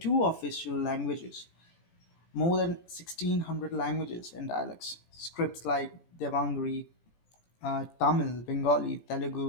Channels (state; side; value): late; right; 17 ms